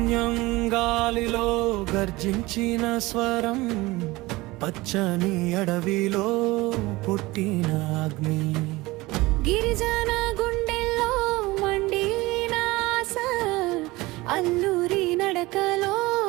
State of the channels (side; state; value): left; quieter; 20.8 dB